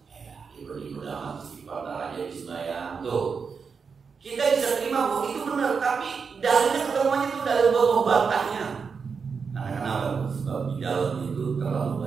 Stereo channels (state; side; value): quieter; left; 5.6 dB